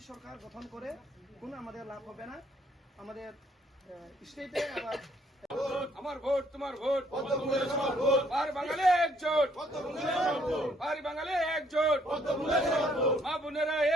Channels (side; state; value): both; normal; correlation 0.67